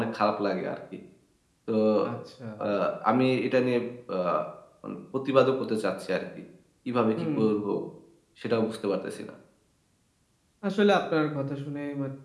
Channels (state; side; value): identical; both; correlation 1.00